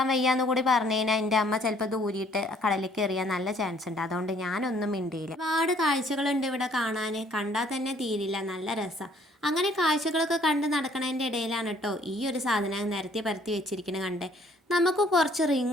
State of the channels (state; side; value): normal; both; correlation 0.61